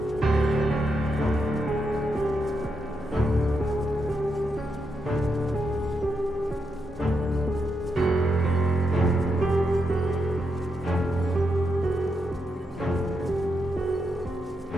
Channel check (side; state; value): both; normal; correlation 0.83